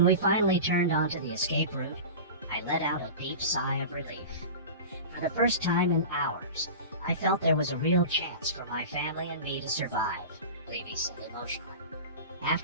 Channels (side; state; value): both; inverted; correlation -0.31